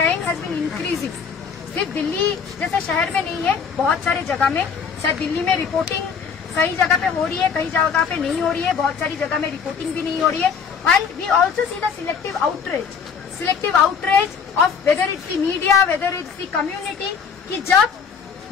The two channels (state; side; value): quieter; right; 6.3 dB